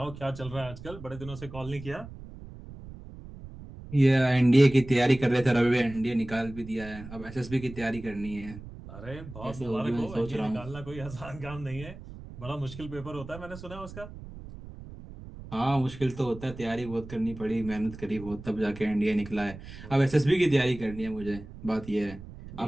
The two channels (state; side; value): noise; right; rumble, 14 dB below the sound